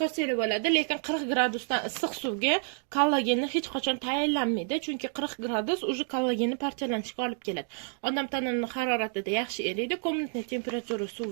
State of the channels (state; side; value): silent; left; 57 dB below the other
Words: bo'ladi, lekin 40 gradusdan issiq suvga kollagenni hech qachon tayyorlanmaydi, chunki 40 gradus уже kollagenni parchalanishiga olib keladi. Odam tanasining haroratida yaxshi eriydi. Komnatniy temperatura